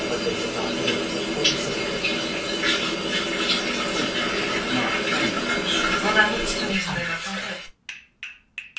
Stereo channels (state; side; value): identical; both; correlation 1.00